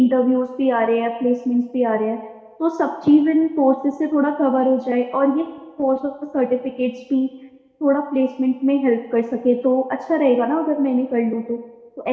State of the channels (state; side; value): identical; both; correlation 1.00